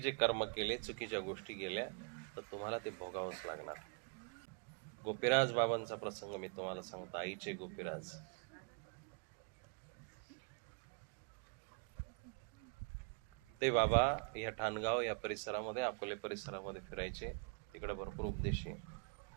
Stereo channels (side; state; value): left; quieter; 36.2 dB